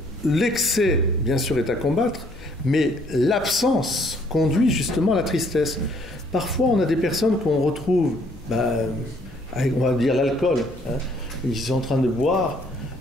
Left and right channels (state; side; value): noise; left; hum, 20 dB below the sound